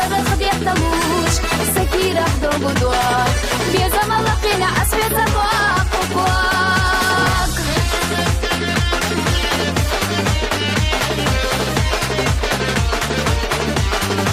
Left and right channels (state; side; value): identical; both; correlation 1.00